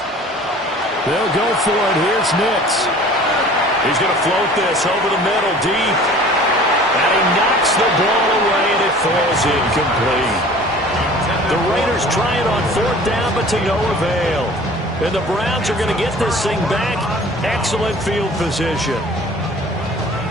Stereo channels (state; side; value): normal; both; correlation 0.46